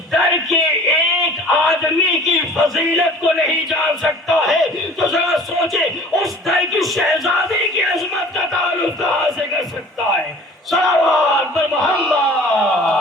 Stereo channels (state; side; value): normal; both; correlation 0.47